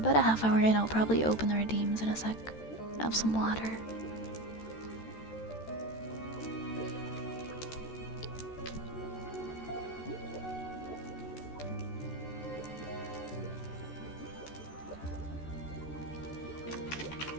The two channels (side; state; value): right; late; 13 ms